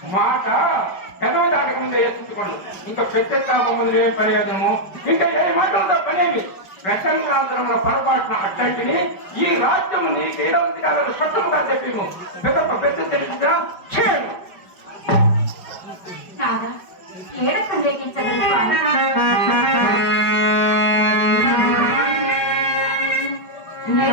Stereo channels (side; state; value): right; late; 5.2 ms